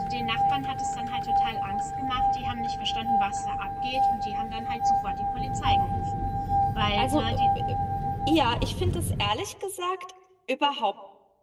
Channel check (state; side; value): identical; both; correlation 1.00